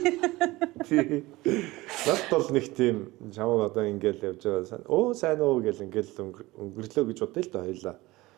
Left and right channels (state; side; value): quieter; left; 19.9 dB